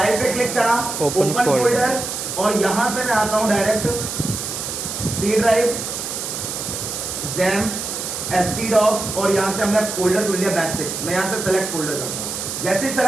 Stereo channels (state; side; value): noise; right; hiss, 5 dB below the sound